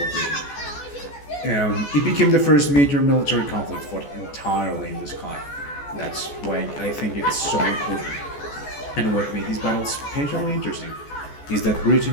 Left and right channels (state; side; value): late; right; 14 ms